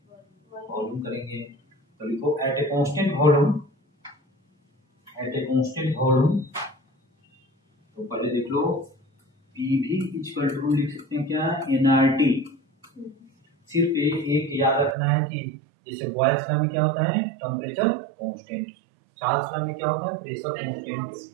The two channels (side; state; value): left; drops out; at 15.0 s